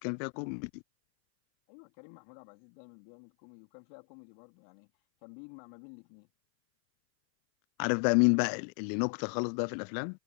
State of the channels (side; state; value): right; silent; 55 dB below the other